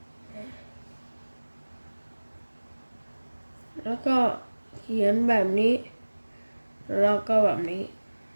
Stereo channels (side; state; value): both; inverted; correlation -1.00